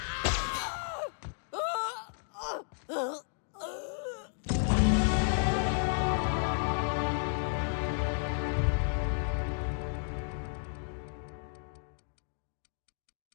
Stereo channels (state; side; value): silent; right; 56 dB below the other